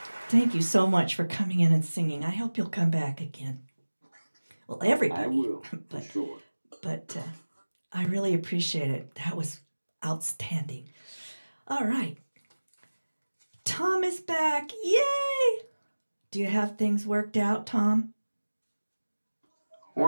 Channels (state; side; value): inverted; both; correlation -1.00